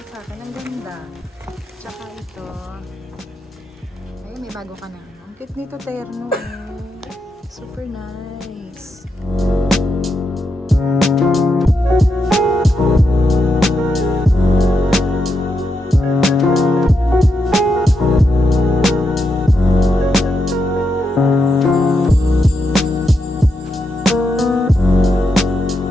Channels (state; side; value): normal; both; correlation 0.84